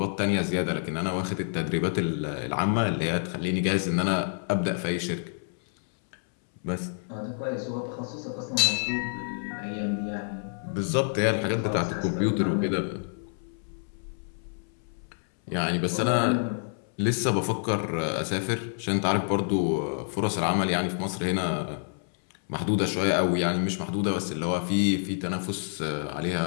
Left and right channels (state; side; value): silent; right; 59 dB below the other